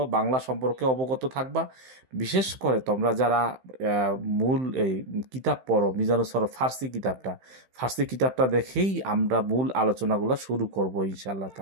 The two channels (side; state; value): left; late; 15 ms